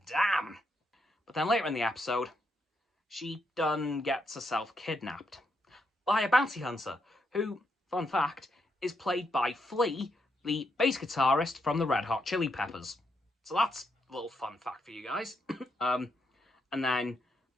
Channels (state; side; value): normal; both; correlation 0.80